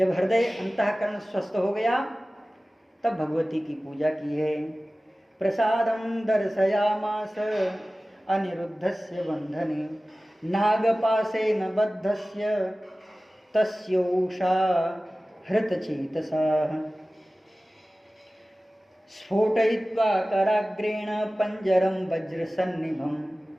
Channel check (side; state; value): both; normal; correlation 0.97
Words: हृदय अंतःकरण स्वस्थ हो गया, तब भगवती की पूजा की है। प्रसादम दर्शयामास अनिरुद्धस्य बंधने, नागपाशेन बद्धस्य तस्योषा हृतचेतसाः, स्फोटयित्वा कराग्रेण पंजरम वज्रसन्निभम।